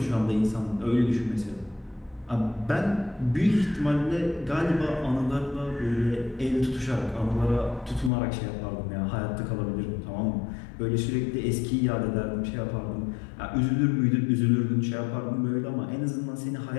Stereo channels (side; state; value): right; drops out; at 8.1 s